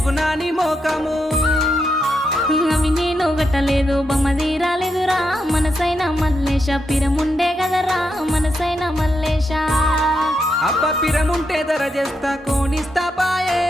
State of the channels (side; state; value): both; normal; correlation 0.83